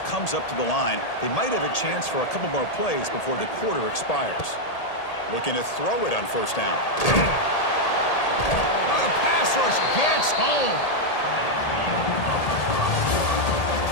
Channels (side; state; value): right; late; 1.8 ms